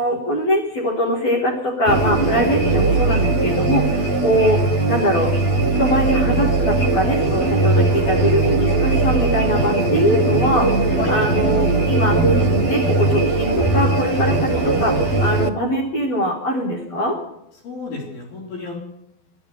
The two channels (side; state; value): right; late; 12 ms